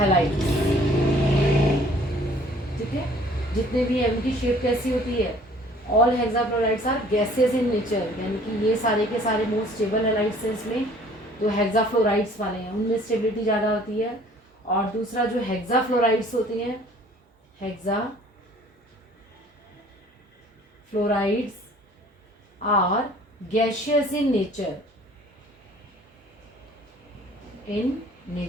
ठीक है, जितने भी है उनकी शेप कैसी होती है, all hexafluorides are gases in nature, यानी कि ये सारे के सारे मोस्ट स्टेबल हैलाइड्स हैं। इसमें जो हेक्साफ्लोराइड्स वाले हैं उनमें स्टेबिलिटी ज़्यादा होती है। और दूसरा जो हेक्साफ्लोराइड्स होती हैं, hexafluorides are gaseous in nature, in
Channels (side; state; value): both; normal; correlation 0.54